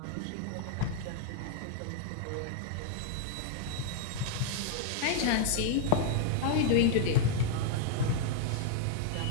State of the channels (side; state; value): both; different; correlation -0.01